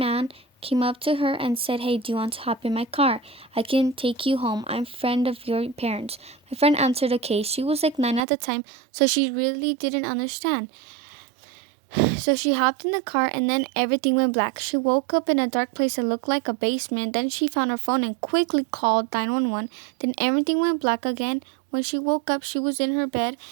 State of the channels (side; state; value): left; drops out; at 8.2 s